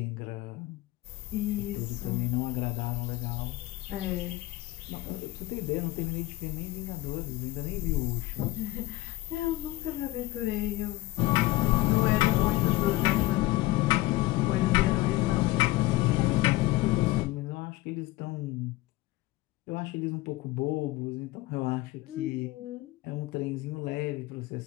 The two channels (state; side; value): quieter; right; 18.3 dB